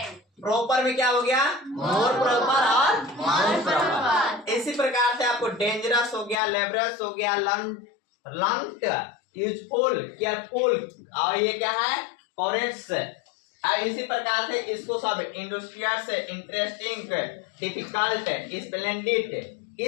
प्रॉपर में क्या हो गया, मोर प्रॉपर और मोस्ट प्रॉपर। इसी प्रकार से आपको डेंजरस हो गया, लेबरस हो गया, लंग्ड, यूजफुल, केयरफुल, और ये क्या है, करेक्ट्स। और इसी प्रकार से इसको सब इंडस्ट्रियस, इंटरेस्टिंग, डिफिकल्ट, स्प्लेंडिड,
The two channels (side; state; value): right; drops out; at 6.4 s